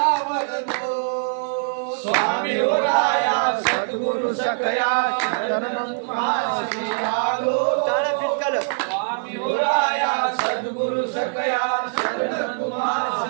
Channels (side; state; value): left; silent; digital silence